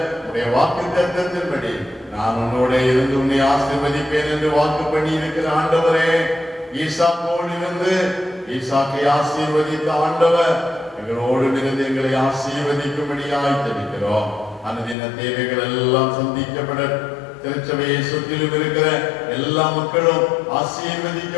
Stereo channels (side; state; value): right; drops out; at 15.0 s